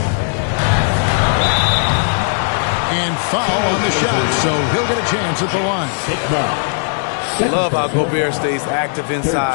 And foul on the shot, so he'll get a chance at the line. Love how Gobert stays active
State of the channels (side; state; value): right; silent; digital silence